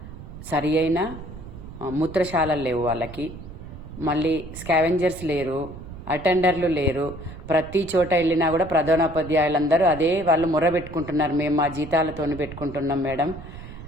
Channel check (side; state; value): right; noise; rumble, 13 dB below the sound